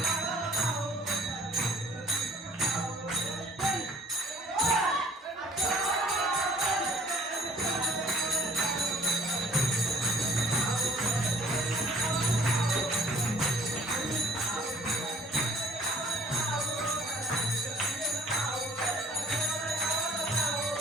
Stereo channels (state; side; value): normal; both; correlation 0.53